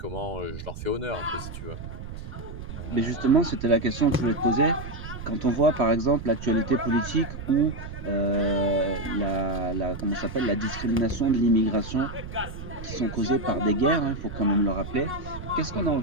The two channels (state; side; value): noise; right; rumble, 10 dB below the sound